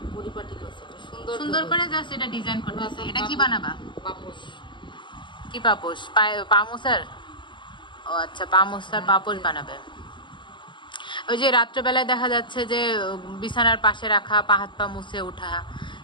পরিপাটি করছে সুন্দর করে জাস্ট এটা ডিজাইন করতেছে। এটা কি বানাবা? পাপোশ। কি পাপোশ? পামোসার? ও আচ্ছা, পামোসার পাপোশ বানাবে। ওই যে রাত্রেবেলায় দেখা যাচ্ছে যে বিছানার পাশে রাখা, পা হাত পা মুছে ওঠা,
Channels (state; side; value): late; right; 0.23 ms